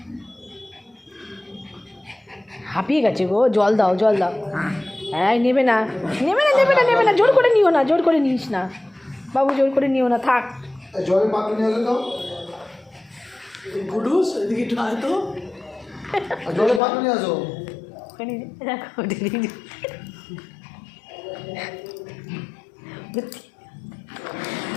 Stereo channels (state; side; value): drops out; right; at 16.8 s